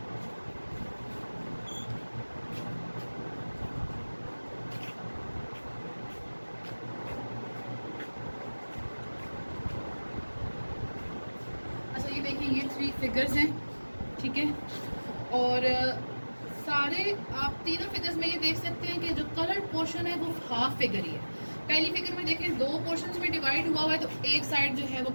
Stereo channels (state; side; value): inverted; both; correlation -1.00